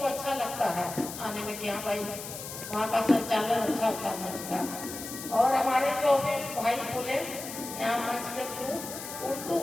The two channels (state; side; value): noise; left; hiss, 9 dB below the sound